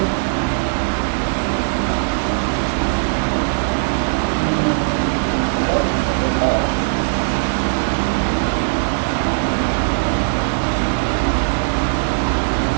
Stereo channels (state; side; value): silent; left; digital silence